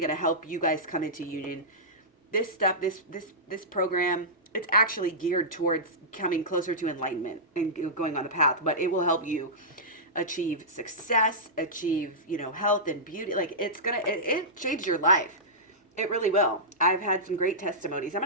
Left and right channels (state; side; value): normal; both; correlation -0.15